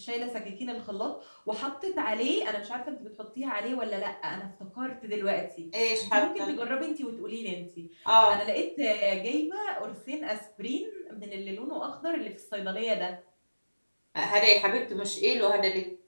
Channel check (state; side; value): inverted; both; correlation -1.00